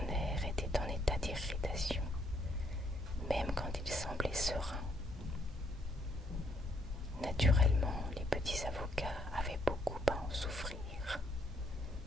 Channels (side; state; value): both; normal; correlation 0.71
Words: était en état d'irritation, même quand il semblait serein. Naturellement, les petits avocats avaient beaucoup à en souffrir.